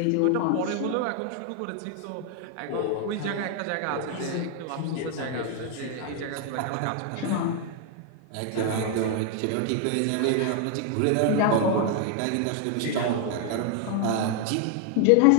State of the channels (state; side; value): different; both; correlation 0.00